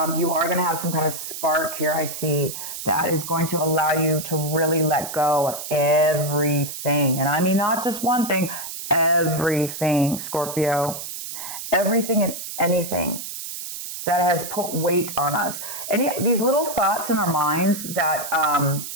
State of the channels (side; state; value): right; noise; hiss, 8 dB below the sound